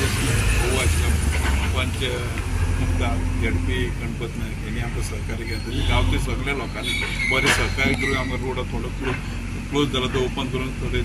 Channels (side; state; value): both; identical; correlation 1.00